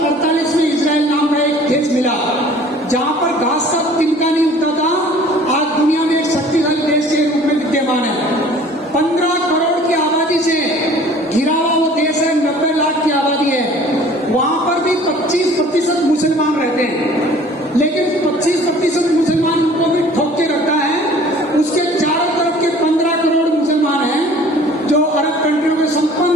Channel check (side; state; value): both; normal; correlation 0.50